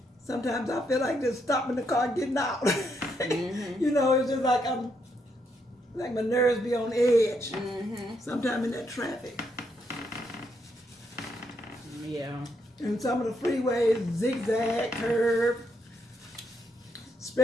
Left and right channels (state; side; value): normal; both; correlation 0.77